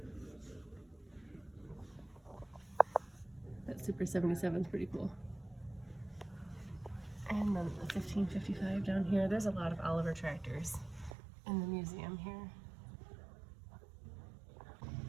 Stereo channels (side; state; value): left; drops out; at 11.2 s